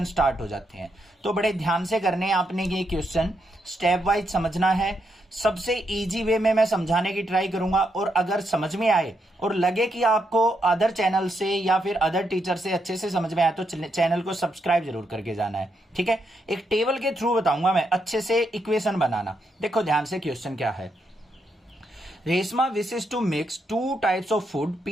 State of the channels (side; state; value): both; normal; correlation 0.80